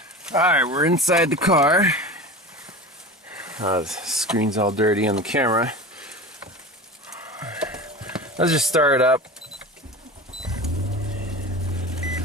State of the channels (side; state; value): both; normal; correlation 0.30